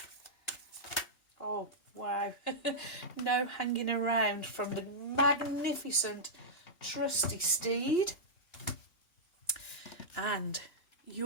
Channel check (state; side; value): late; right; 2.8 ms